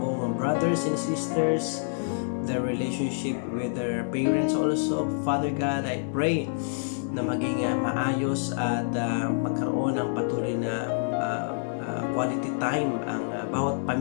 brothers and sisters, their relationship with their parents also. Father God, I pray na maging maayos at magkaroon ng patuloy na quality time ang bawat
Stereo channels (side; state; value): right; silent; 60 dB below the other